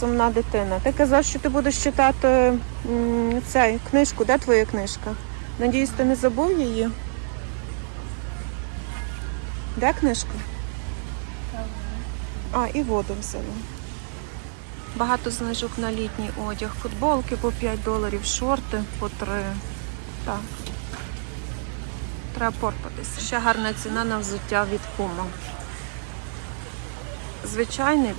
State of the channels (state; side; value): silent; left; digital silence